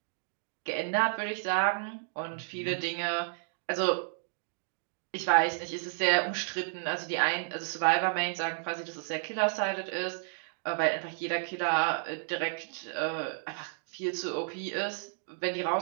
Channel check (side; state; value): left; silent; digital silence